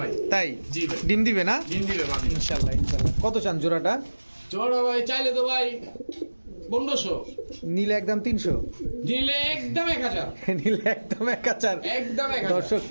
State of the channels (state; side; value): inverted; both; correlation -1.00